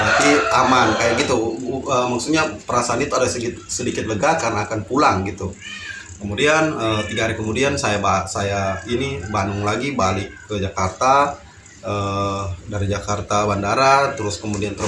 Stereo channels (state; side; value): identical; both; correlation 1.00